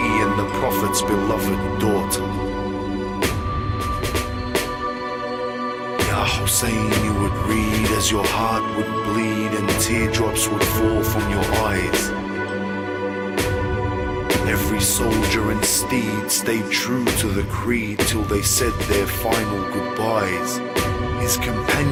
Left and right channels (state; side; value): identical; both; correlation 1.00